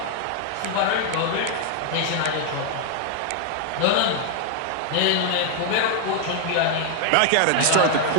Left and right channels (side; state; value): both; different; correlation 0.00